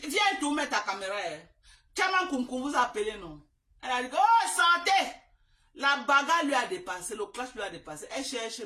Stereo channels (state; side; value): identical; both; correlation 1.00